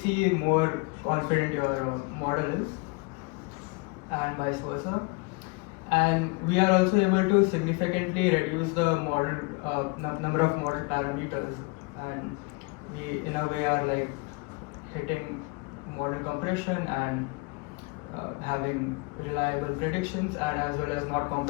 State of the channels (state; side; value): quieter; right; 27.7 dB